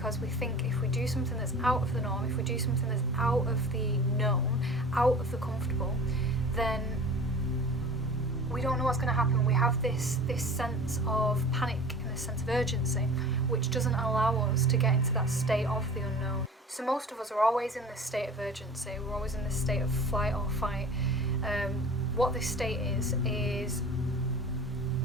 we think if we do something that's out of the norm, if we do something that's out of the known, out of the comfortable, then we don't know what's going to happen. We have this sense of panic and this sense of urgency, which doesn't allow us to get into that state of the unknown. So most of us are always in this state of urgency. We're always in this state of flight or fight. What this state is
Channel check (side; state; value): both; normal; correlation 0.40